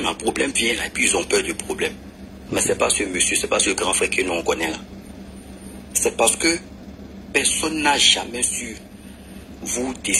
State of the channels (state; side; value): identical; both; correlation 1.00